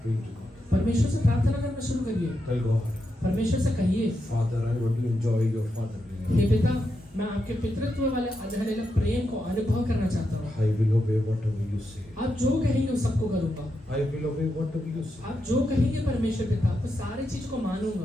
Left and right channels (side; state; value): both; normal; correlation 0.85